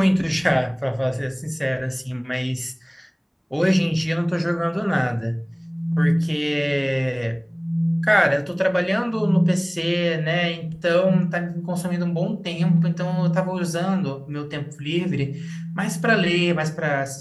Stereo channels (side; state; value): both; identical; correlation 1.00